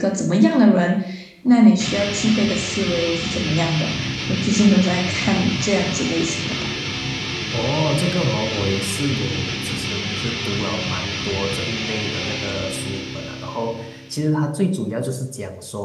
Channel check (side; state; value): both; identical; correlation 1.00